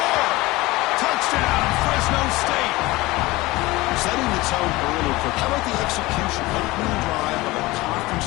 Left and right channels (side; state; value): right; quieter; 20.3 dB